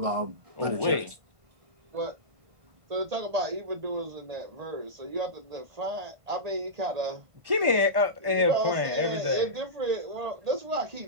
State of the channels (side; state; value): left; late; 1.5 ms